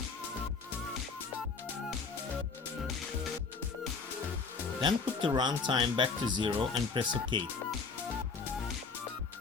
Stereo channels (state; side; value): quieter; right; 4.9 dB